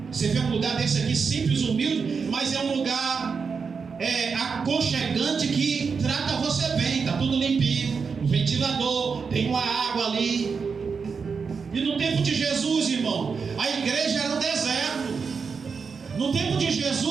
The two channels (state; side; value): quieter; left; 5.5 dB